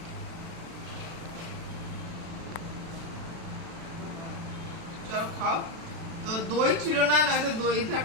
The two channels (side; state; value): left; late; 36 ms